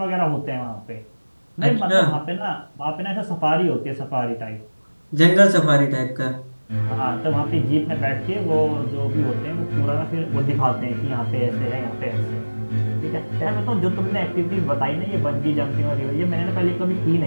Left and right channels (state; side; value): inverted; both; correlation -1.00